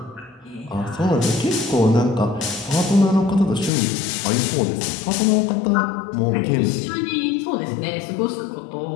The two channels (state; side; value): drops out; right; at 3.7 s